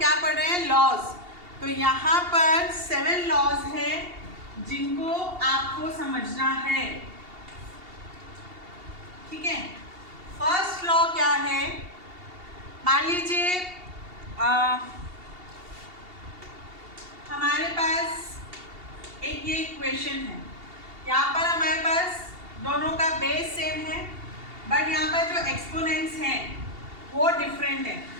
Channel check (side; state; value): left; late; 2.8 ms